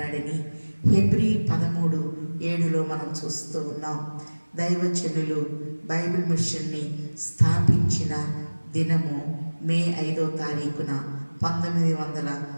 హెబ్రీ 13:7 మనం చూస్తూ ఉన్నాం. దైవజనులు బైబిల్ మిషన్ని స్థాపించిన దినము మే 5వ తారీఖున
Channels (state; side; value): inverted; both; correlation -1.00